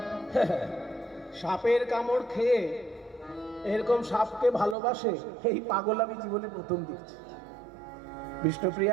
সাপের কামড় খেয়ে এরকম সাপকে ভালোবাসে এই পাগল আমি জীবনে প্রথম দেখছি।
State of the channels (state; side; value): drops out; left; at 4.8 s